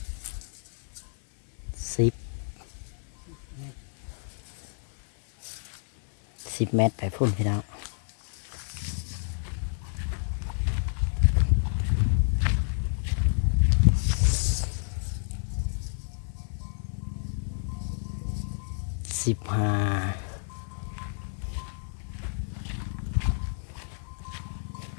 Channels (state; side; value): silent; right; digital silence